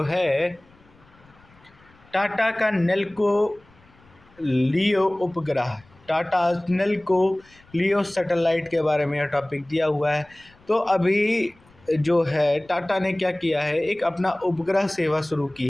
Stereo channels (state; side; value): noise; left; rumble, 29 dB below the sound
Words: है टाटा का नेल्को लियो उपग्रह, टाटा नेल्को लियो सैटेलाइट के बारे में यह टॉपिक दिया हुआ है। तो अभी जो है टाटा ने क्या किया है, एक अपना उपग्रह सेवा शुरू